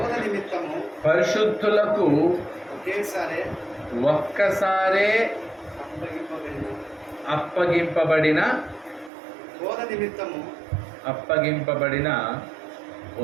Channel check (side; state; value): left; drops out; at 9.1 s